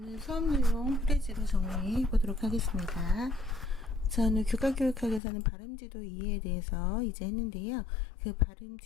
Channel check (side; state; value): right; drops out; at 5.2 s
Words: 수업 내용 프레지로 정리해 보도록 하겠습니다. 저는 교과교육학에서는 발음지도 이해에 대해서 이제 했는데요. 그